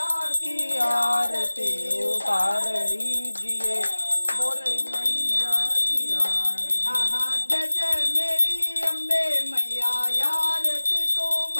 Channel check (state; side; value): inverted; both; correlation -1.00